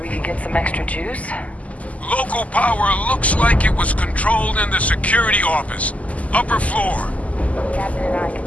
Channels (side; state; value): right; late; 0.071 ms